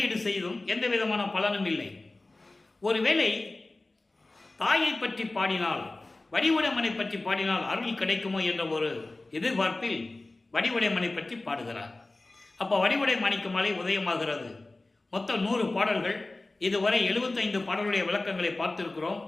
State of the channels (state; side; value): quieter; right; 3.0 dB